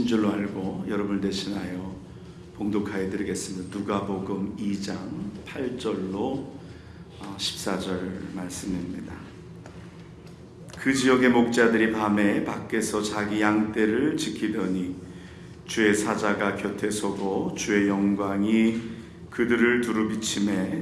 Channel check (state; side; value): identical; both; correlation 1.00